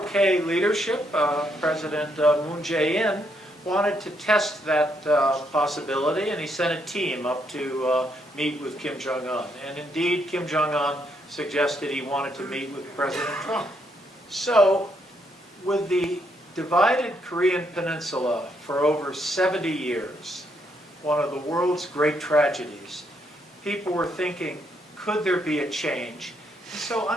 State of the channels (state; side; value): normal; both; correlation 0.75